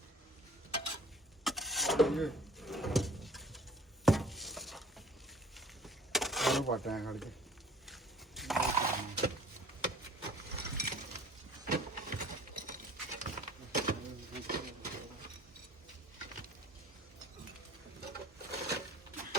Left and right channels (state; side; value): normal; both; correlation 0.49